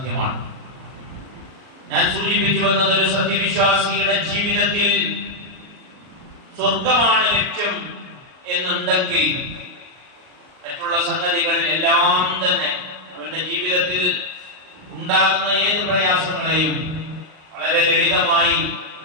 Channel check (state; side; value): late; left; 38 ms